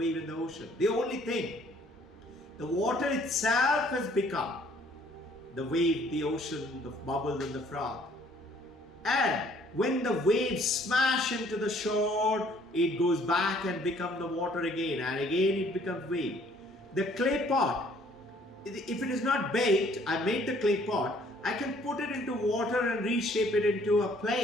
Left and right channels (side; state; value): both; normal; correlation 0.60